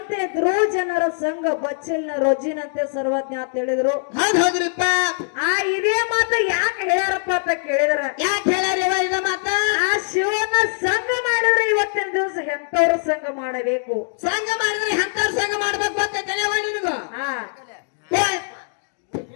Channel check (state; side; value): silent; right; digital silence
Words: ಧ್ರುವಜನರ ಸಂಘ ಬಚ್ಚಲಿನ ರೊಜ್ಜಿನಂತೆ ಸರ್ವಜ್ಞ ಅಂತ ಹೇಳಿದ್ರು. ಹೌದ್ರಿಪ್ಪ. ಇದೇ ಮಾತು ಯಾಕೆ ಹೇಳ್ಯಾರಪ್ಪ ಅಂತ ಕೇಳಿದ್ರ, ಯಾಕೆ ಹೇಳ್ಯಾರ ಇದ ಮಾತ? ಆ ಶಿವನ ಸಂಘ ಮಾಡಿದ್ರೆ ಇವತ್ತಿನ ದಿವಸ ಎಂತವ್ರ ಸಂಘ ಮಾಡಬೇಕು, ಸಂಘ ಮಾಡಿದ್ರೆ ಎಂತವ್ರ ಸಂಘ ಮಾಡ್ಬೇಕು ಅಂತ ತಿಳಿಯವ ನಿನಗೂ?